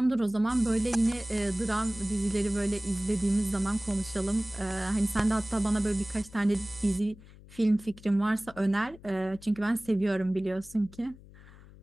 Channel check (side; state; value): left; noise; hum, 21 dB below the sound